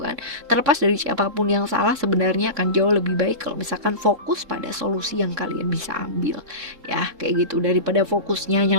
kan. Terlepas dari siapapun yang salah, sebenarnya akan jauh lebih baik kalau misalkan fokus pada solusi yang kalian bisa ambil ya, kayak gitu, daripada fokusnya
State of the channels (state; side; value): late; left; 3.5 ms